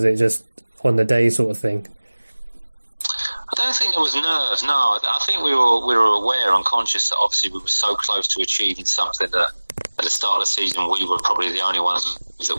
it just on the day sort of thing? I don't think there was nerves. No, I think we were aware and conscious that obviously we were so close to achieving something that at the start of the season we were probably the only ones that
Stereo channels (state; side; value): inverted; both; correlation -1.00